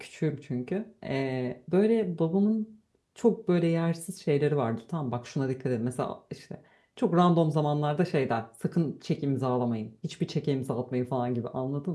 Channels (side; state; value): both; identical; correlation 1.00